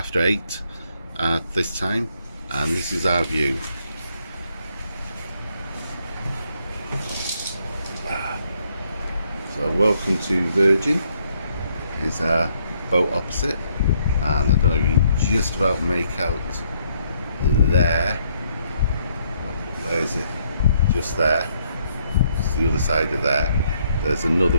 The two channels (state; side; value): inverted; both; correlation -0.71